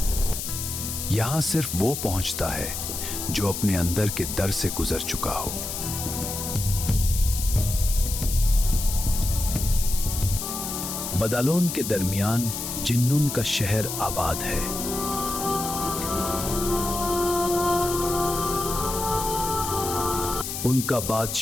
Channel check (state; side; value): noise; left; hiss, 5 dB below the sound